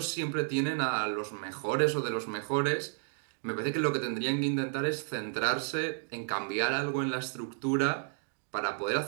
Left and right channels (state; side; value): silent; left; digital silence